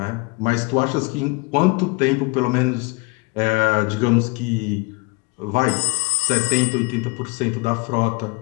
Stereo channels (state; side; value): quieter; right; 27.5 dB